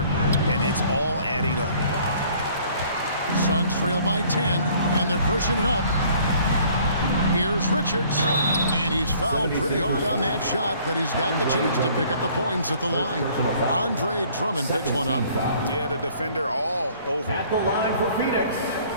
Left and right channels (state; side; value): inverted; both; correlation -0.56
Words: and it's all adding up. Suns trail by 10, and they're pushing it up. Here's Richards, and he's fouled pretty hard on that shot, but he's got the chance to pick up the points at the line. Andre Drummond picks one up. Yeah, the defender all over. At the line for Phoenix,